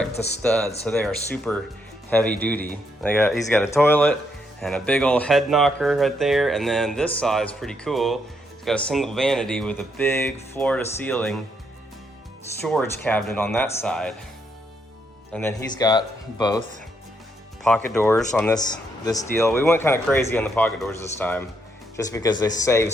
to stud, so they are super heavy duty. He's got a toilet and a big old head knocker right there, and then this side is pretty cool. It's got a single vanity with a big floor-to-ceiling storage cabinet on that side. And then he's got both pocket doors on this deal. We went kind of crazy on the pocket doors this time, just because they save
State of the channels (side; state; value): both; normal; correlation 0.76